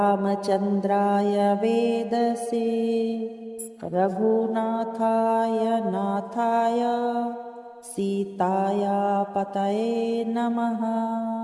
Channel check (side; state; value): both; identical; correlation 1.00